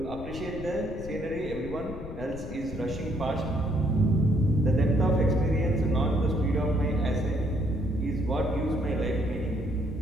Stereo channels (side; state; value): left; noise; rumble, 11 dB below the sound